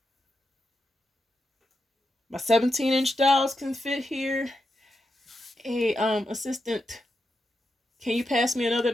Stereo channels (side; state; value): both; normal; correlation 0.86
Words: my 17-inch dolls can fit here. Hey, assistant, can you pass me another